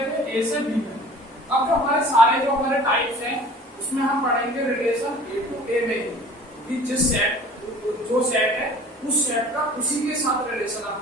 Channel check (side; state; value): both; normal; correlation 0.46